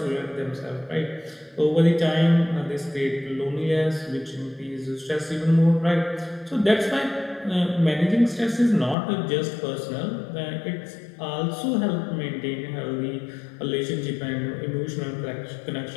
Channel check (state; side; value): drops out; right; at 9.0 s